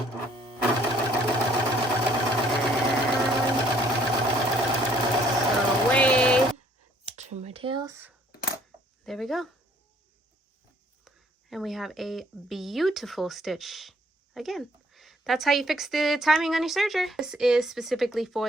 Sew away. Trim my tails. There we go. And we have a beautiful stitch. Again, that's how you fix the timing on your serger. This is specifically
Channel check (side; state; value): both; normal; correlation 0.62